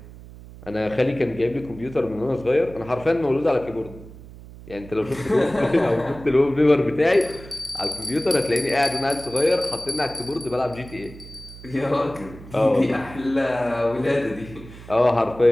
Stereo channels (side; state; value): right; noise; hum, 17 dB below the sound